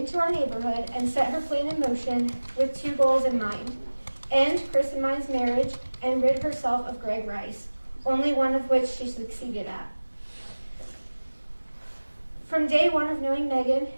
our neighborhood and set her plan in motion with 2 goals in mind: end Chris and mine's marriage and rid herself of Greg Rice, only one of which she succeeded at. From day one of knowing Meagan,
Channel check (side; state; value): both; inverted; correlation -1.00